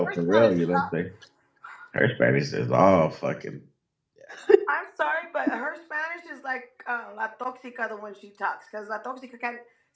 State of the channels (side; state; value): both; identical; correlation 1.00